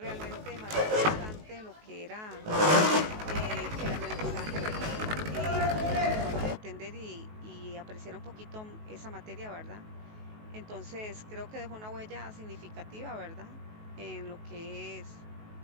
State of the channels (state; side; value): late; left; 19 ms